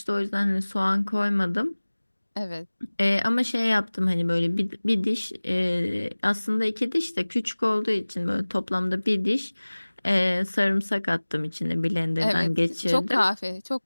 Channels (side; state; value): both; inverted; correlation -1.00